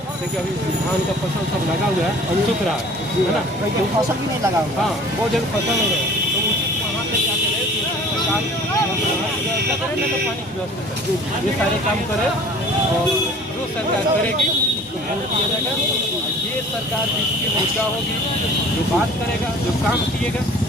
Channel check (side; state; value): both; normal; correlation 0.47